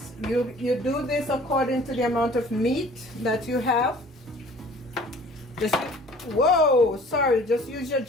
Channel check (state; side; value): normal; both; correlation 0.50